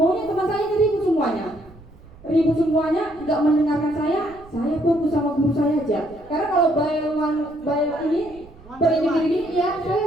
teman saya ribut semuanya. Ribut semuanya, nggak mendengarkan saya fokus sama guru saya aja. Karena kalau bayaran ini per ini ya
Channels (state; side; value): noise; right; rumble, 23 dB below the sound